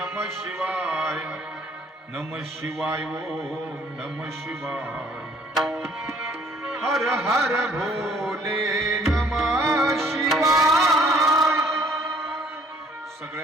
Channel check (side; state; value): both; normal; correlation 0.58